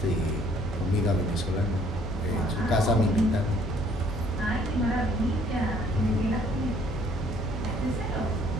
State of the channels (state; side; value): normal; both; correlation 0.61